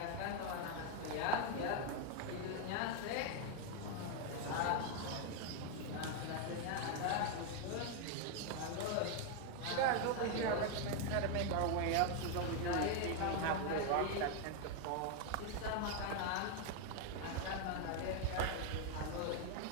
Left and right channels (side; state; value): both; different; correlation 0.01